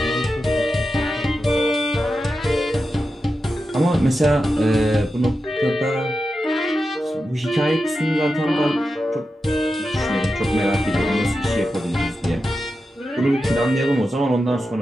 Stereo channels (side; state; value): both; normal; correlation 0.90